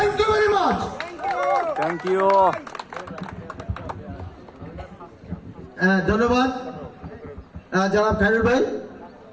you very much. Thank you. ধন্যবাদ জনাব খায়রুল ভাই।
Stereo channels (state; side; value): identical; both; correlation 1.00